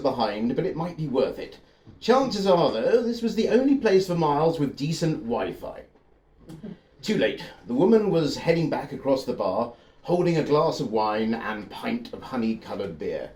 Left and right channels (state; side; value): identical; both; correlation 1.00